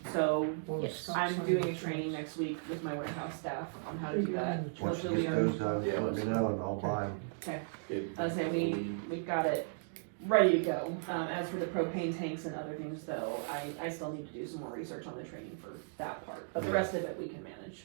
So Yes. I'm doing a training next week with my warehouse staff on how to do that. Once you Hopefully get we are, those done, let me know and I'll buy them. we've got it ready to go. As for the propane tanks and other things though, I still need to do some more research on the training for that part, but the rest of it we can manage.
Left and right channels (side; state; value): left; silent; digital silence